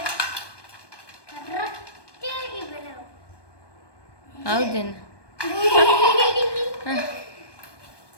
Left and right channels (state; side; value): late; right; 1.2 ms